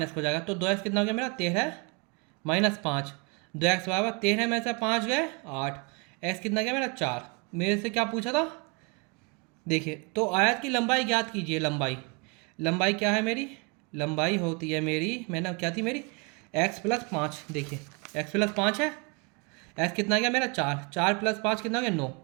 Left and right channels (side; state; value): left; quieter; 30.7 dB